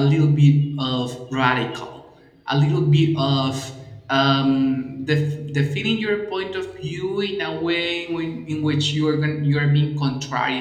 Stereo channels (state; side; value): identical; both; correlation 1.00